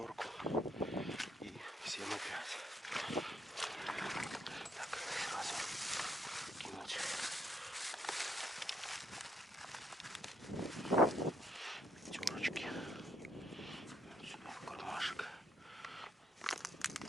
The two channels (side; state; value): both; normal; correlation 0.73